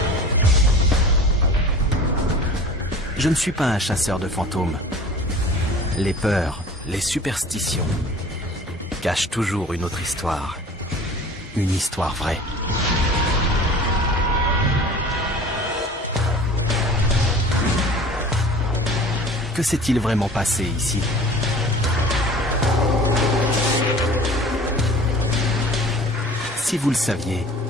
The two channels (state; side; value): normal; both; correlation 0.43